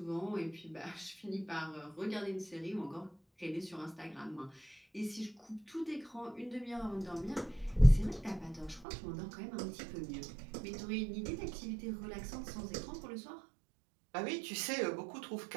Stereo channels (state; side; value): drops out; left; at 8.8 s